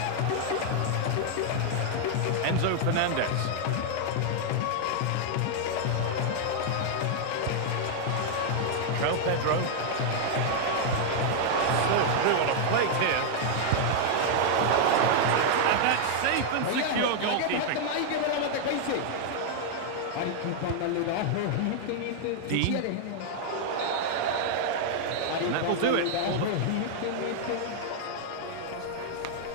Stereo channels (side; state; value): both; different; correlation 0.00